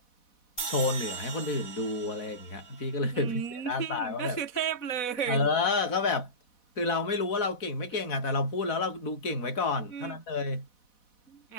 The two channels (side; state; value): right; late; 4.1 ms